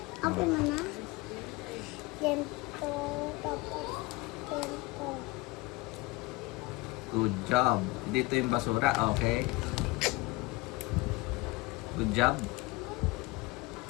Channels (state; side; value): quieter; right; 22.1 dB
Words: Open mo na. Ganito, tapos ganito. Good job. Dito yung basura, okay? Good job.